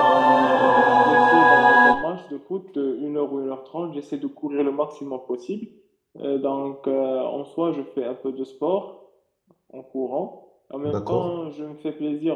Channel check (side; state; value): both; identical; correlation 1.00